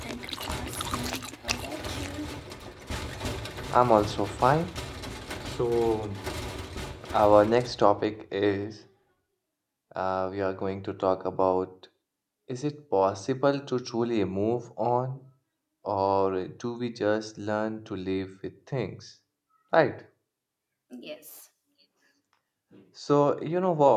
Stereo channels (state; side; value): identical; both; correlation 1.00